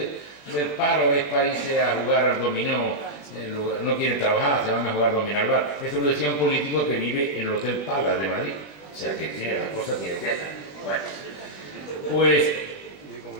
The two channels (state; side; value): late; right; 20 ms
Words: paro es para irse a jugar al dominó no quieren trabajar, se van a jugar dominó al bar. Eso lo decía un político que vive en el Hotel Palace de Madrid. O sea que tiene las cosas tiene que ser. Bueno, pues